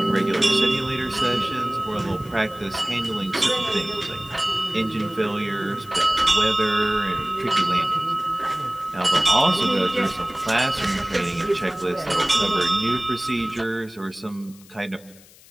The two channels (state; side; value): noise; left; hiss, 24 dB below the sound